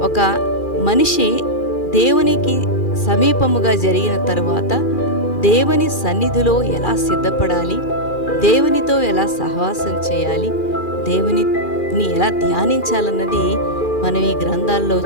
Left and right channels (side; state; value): right; late; 2.4 ms